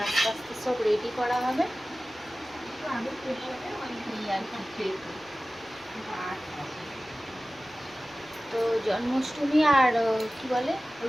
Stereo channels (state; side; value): noise; left; rumble, 29 dB below the sound